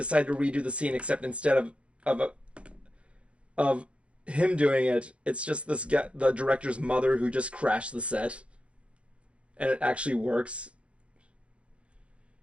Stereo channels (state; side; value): late; left; 0.061 ms